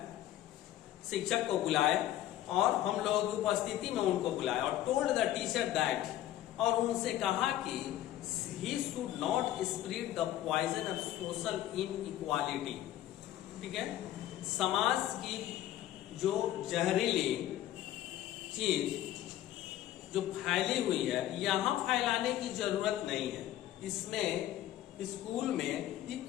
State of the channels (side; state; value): right; quieter; 13.2 dB